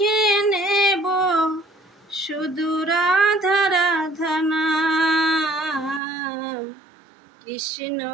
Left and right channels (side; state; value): left; drops out; at 6.0 s